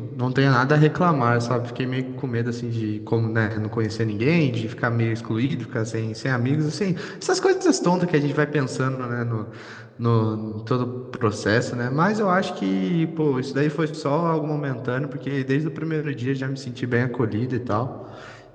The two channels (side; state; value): both; identical; correlation 1.00